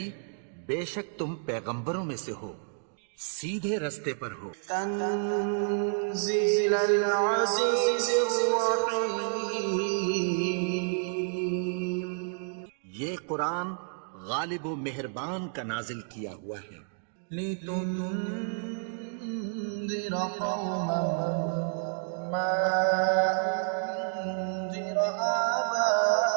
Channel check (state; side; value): silent; left; digital silence